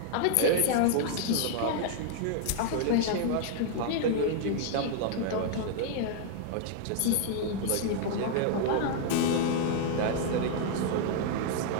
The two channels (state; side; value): different; both; correlation -0.01